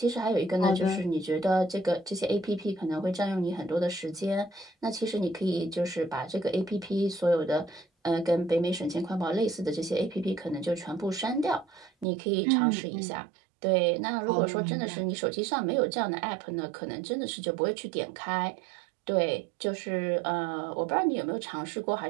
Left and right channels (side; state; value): left; drops out; at 12.1 s